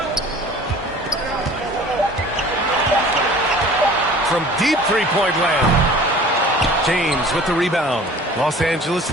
From deep three-point land. James with the rebound. Los Angeles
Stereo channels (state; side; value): normal; both; correlation 0.46